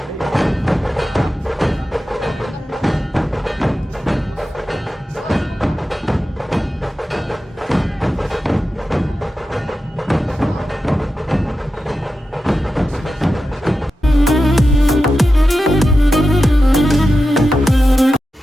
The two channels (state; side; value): normal; both; correlation 0.91